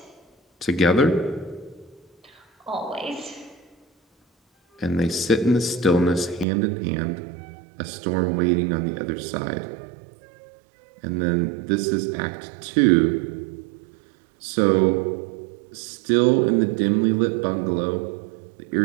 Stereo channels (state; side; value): drops out; left; at 6.5 s